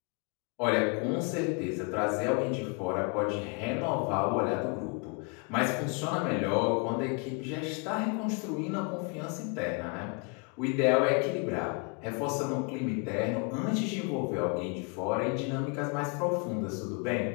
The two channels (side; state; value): right; quieter; 34.8 dB